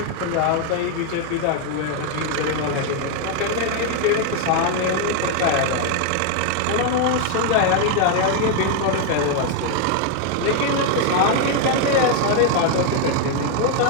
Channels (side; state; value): both; different; correlation 0.01